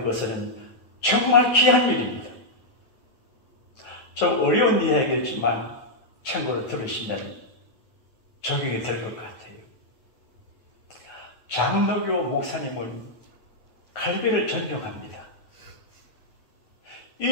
것은 정말 귀한 일입니다. 좀 어려운 이야기겠지만 참고로 들으시면 적용이 될 것 같아요. 장로교 목사님은 갈비를 존경합니다.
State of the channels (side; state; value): right; late; 9.2 ms